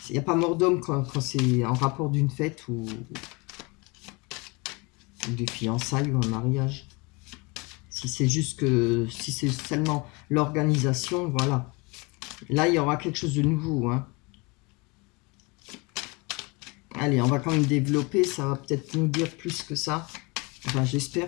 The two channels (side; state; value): right; quieter; 27.5 dB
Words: Il n'y a pas mort d'homme quand c'est en rapport d'une fête ou des fiançailles ou un mariage. Si c'est juste que, si c'est seulement l'organisation, voilà. Là, il y aura quelque chose de nouveau, hein. Allez, on va quand même développer, ça va peut-être nous dire plus que ça. Enfin,